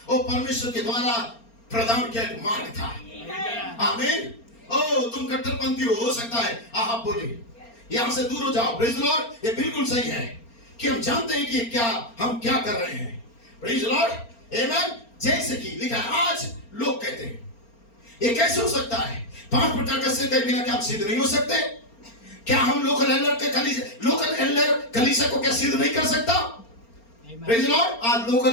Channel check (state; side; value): late; right; 4.4 ms